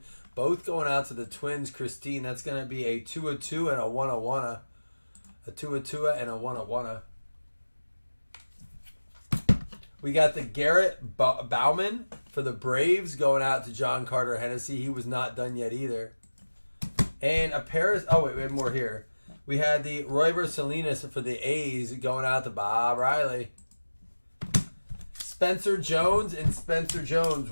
both going out to the Twins, Christine. That's going to be a 2-2 and a 1-1. A 2-2 and a 1-1. We got the Garrett Bauman for the Braves going out to John Carter Hennessy. He was not done yet either. And a Paris. Oh, wait, we have more here. We had the Royber Salinas for the A's going out to Bob Riley. Spencer Jones and Spencer Jones,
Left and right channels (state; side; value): inverted; both; correlation -1.00